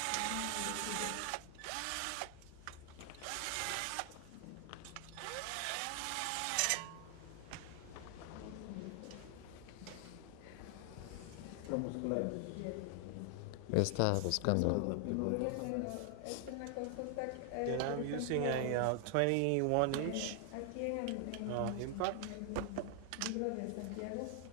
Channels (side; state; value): both; different; correlation 0.00